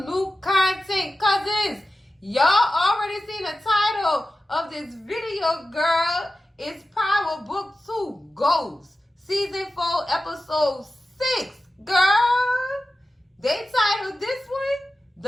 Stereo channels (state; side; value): normal; both; correlation 0.94